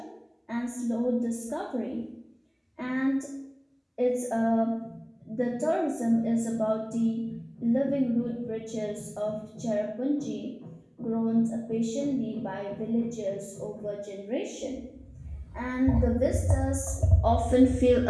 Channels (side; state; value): both; identical; correlation 1.00